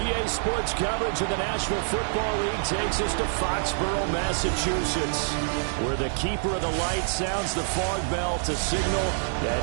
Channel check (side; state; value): left; silent; digital silence